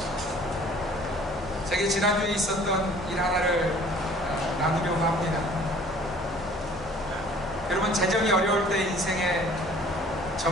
제게 지난주에 있었던 일 하나를 나누려고 합니다. 여러분, 재정이 어려울 때 인생에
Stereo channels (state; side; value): normal; both; correlation 0.52